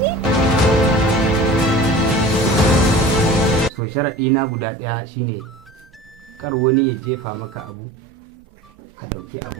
To sharaɗi na guda ɗaya shine kar wani ya jefa maka abu ka ɗauki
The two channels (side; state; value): both; normal; correlation 0.40